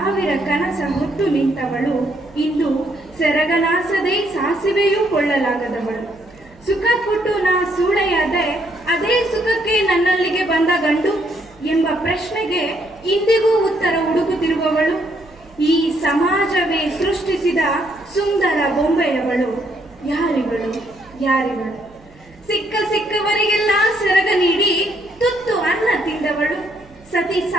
ಕನಸ ಹೊತ್ತು ನಿಂತವಳು, ಇಂದು ಸೆರಗನಾಸದೆ ಸಾಸಿವೆಯೂ ಕೊಳ್ಳಲಾಗದವಳು. ಸುಖ ಕೊಟ್ಟು ನಾ ಸೂಳೆಯಾದೆ, ಅದೇ ಸುಖಕ್ಕೆ ನನ್ನಲ್ಲಿಗೆ ಬಂದ ಗಂಡು ಎಂಬ ಪ್ರಶ್ನೆಗೆ ಇಂದಿಗೂ ಉತ್ತರ ಹುಡುಕುತ್ತಿರುವವಳು. ಈ ಸಮಾಜವೇ ಸೃಷ್ಟಿಸಿದ ಸುಂದರ ಬೊಂಬೆಯವಳು. ಯಾರಿವಳು ಯಾರಿವಳು. ಸಿಕ್ಕವರಿಗೆಲ್ಲ ಸೆರಗ ನೀಡಿ ತುತ್ತು ಅನ್ನ ತಿಂದವಳು. ಸತಿ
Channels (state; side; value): noise; right; hum, 27 dB below the sound